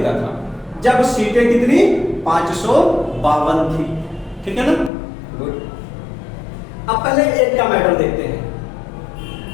था। जब सीटें कितनी? 552 थी। ठीक है ना? गुड। अब पहले एक का मैटर देखते हैं।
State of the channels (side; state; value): right; drops out; at 4.9 s